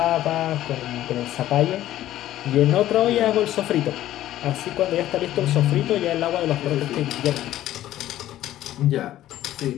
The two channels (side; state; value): right; quieter; 13.5 dB